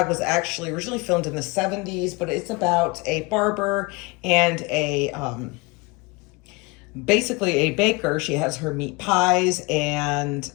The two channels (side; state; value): right; quieter; 26.0 dB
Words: was actually originally filmed in the 70s, but it's about a barber and a, basically a baker. She has her meat pies, and